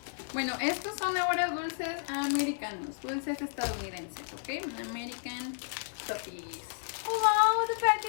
Bueno, estos son ahora dulces americanos, dulces estadounidenses, ¿ok? American toffees. Oh wow, the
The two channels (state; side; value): silent; right; digital silence